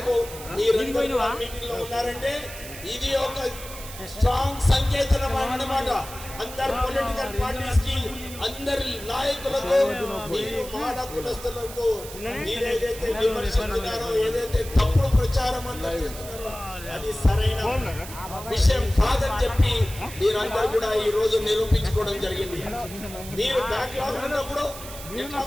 మీరందరూ మీటింగ్ లో ఉన్నారంటే ఇది ఒక స్ట్రాంగ్ సంకేతం అన్నమాట. అందరు పొలిటికల్ పార్టీస్ కి, అందరి నాయకులకు, మీరు మాల కులస్తులకు మీరు ఏదైతే విమర్శిస్తున్నారో, ఏదైతే తప్పుడు ప్రచారం అందరూ చేస్తున్నారో అది సరైన విషయం కాదని చెప్పి మీరందరూ కూడా ఈ రోజు నిరూపించుకోవడం జరిగింది. మీరు బ్యాక్గ్రౌండ్ ఉన్నప్పుడు ఎట్లా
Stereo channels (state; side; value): noise; right; hiss, 13 dB below the sound